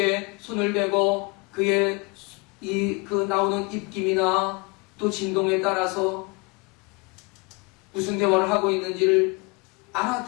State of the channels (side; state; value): right; quieter; 29.6 dB